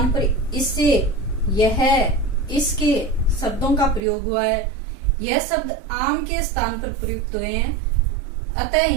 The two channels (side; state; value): left; drops out; at 4.0 s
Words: पर इससे, यह, इसके शब्दों का प्रयोग हुआ है। यह शब्द आम के स्थान पर प्रयुक्त हुए हैं, अतः